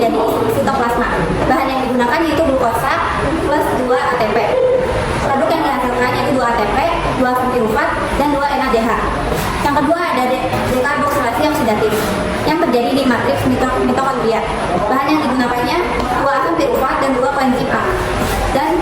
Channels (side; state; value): both; identical; correlation 1.00